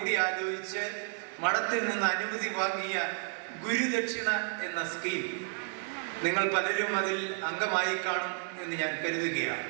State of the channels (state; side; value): silent; left; 57 dB below the other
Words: മഠത്തിൽ നിന്ന് അനുമതി വാങ്ങിയ ഗുരുദക്ഷിണ എന്ന സ്കീം നിങ്ങൾ പലരും അതിൽ അംഗമായി കാണും എന്ന് ഞാൻ കരുതുകയാണ്.